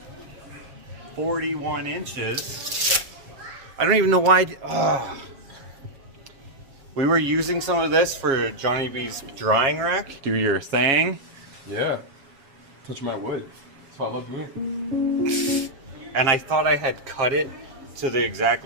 41 inches. I don't even know why. We were using some of this for Johnny B's drying rack. Do your thing. Yeah. Touch my wood. Follow me. And I thought I had cut it to the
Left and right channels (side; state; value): left; late; 7.4 ms